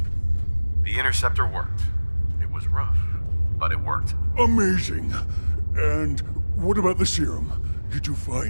The interceptor worked. It was rough, but it worked. Amazing. And what about the serum? Did you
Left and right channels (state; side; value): inverted; both; correlation -1.00